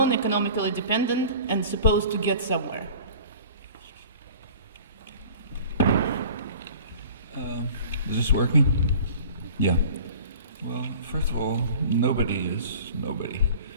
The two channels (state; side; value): inverted; both; correlation -0.44